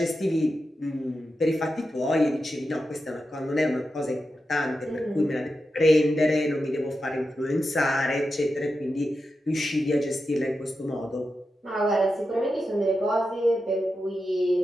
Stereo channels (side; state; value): both; normal; correlation 0.89